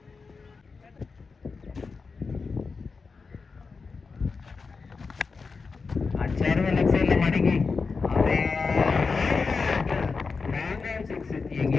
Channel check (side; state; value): right; quieter; 4.7 dB